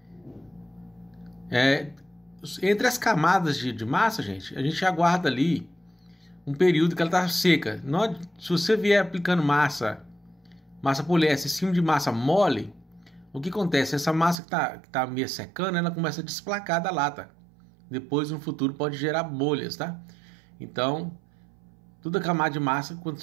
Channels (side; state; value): left; drops out; at 14.4 s